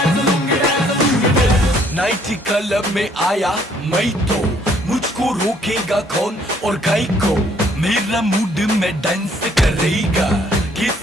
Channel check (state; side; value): normal; both; correlation 0.64